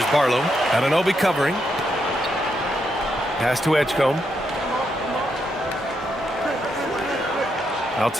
Barlow. Anunoby covering. Pass to Edgecombe.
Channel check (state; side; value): normal; both; correlation 0.80